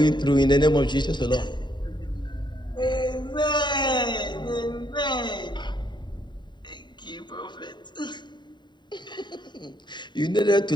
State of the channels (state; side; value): late; right; 0.22 ms